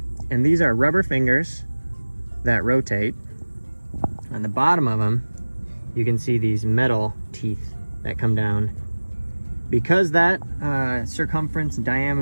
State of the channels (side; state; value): both; inverted; correlation -1.00